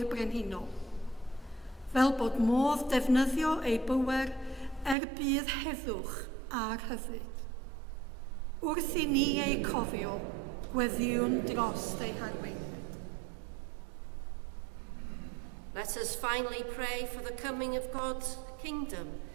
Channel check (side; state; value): left; drops out; at 5.0 s